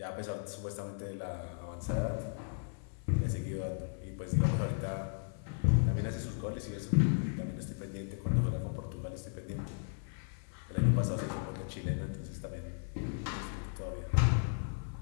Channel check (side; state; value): right; silent; 54 dB below the other